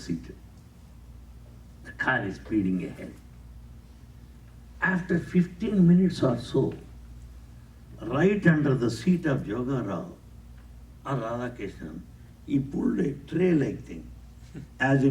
The car is speeding ahead. After 15 minutes or so, right under the seat of Joga Rao or Radha Krishnan, he pulled a tray-like thing. As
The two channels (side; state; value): both; identical; correlation 1.00